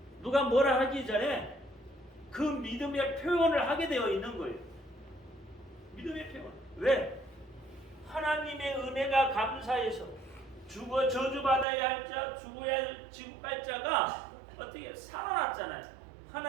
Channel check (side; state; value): left; drops out; at 11.7 s